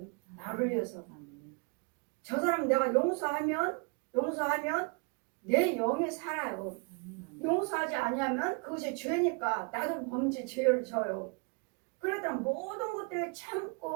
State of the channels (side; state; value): left; quieter; 33.2 dB